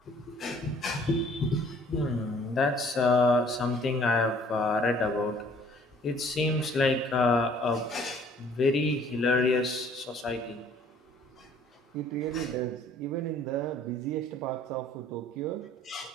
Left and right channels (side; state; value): both; normal; correlation 0.57